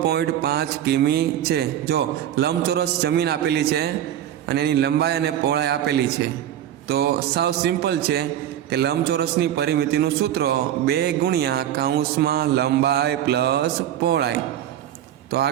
કિમી છે। જો લંબચોરસ જમીન આપેલી છે અને એની લંબાઈ અને પહોળાઈ આપેલી છે, તો સાવ સિમ્પલ છે કે લંબચોરસની પરિમિતિનું સૂત્ર 2 ગુણ્યા કૌંસમાં લંબાઈ પ્લસ પહોળાઈ। તો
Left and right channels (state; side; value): quieter; left; 11.2 dB